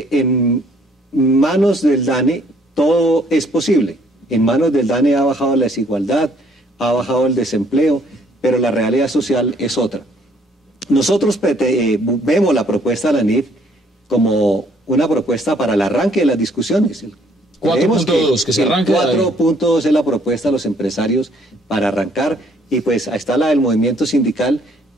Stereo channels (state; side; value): normal; both; correlation 0.64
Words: manos del DANE todo es posible. En manos del DANE ha bajado la desigualdad, ha bajado el desempleo, pero la realidad social es otra. Nosotros vemos la propuesta de la NIF como una propuesta para el arranque de las discusiones. 4.2, que se arranque. 4.2 es la propuesta de los empresarios para arrancar, y pues ahí está la del movimiento sindical,